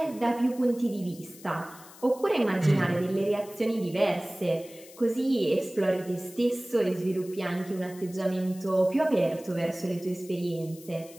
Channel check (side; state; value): left; noise; hiss, 20 dB below the sound